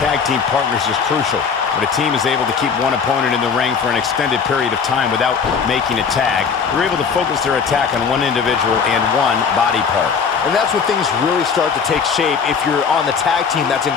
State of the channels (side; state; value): right; quieter; 6.0 dB